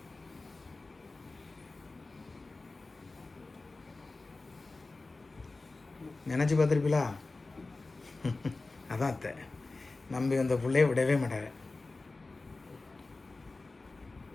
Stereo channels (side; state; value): right; quieter; 3.4 dB